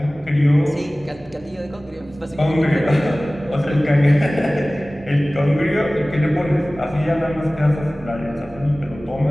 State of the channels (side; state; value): both; normal; correlation 0.98